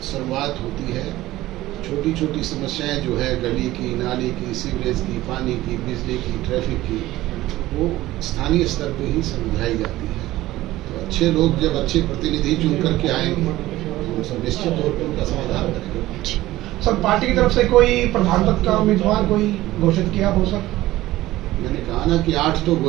शुरुआत होती है। छोटी छोटी समस्याएं जो है गली की, नाली की, सीवरेज की, पानी की, बिजली की, ट्रैफिक की, वो स्थानीय स्तर पे ही समझाई जाती है। तो अच्छे लोग जब अच्छे प्रतिनिधि चुन करके आएंगे तो सब निश्चित तौर पर उनका समाधान करेंगे। सर, पार्टी की तरफ से कोई प्रधान पद का उम्मीदवार कोई घोषित किया हो? सर, मैंने कहा ना कि 8 तो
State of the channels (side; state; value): left; quieter; 16.5 dB